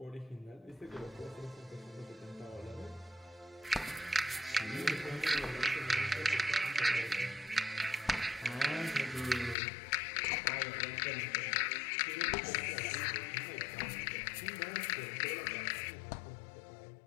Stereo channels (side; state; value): right; drops out; at 9.6 s